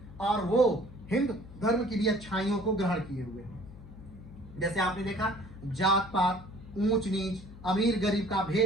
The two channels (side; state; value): left; noise; hum, 17 dB below the sound